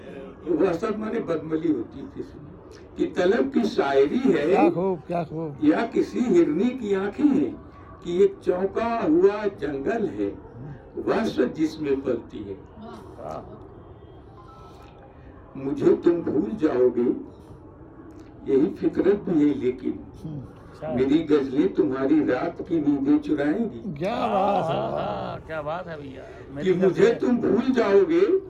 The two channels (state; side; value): identical; both; correlation 1.00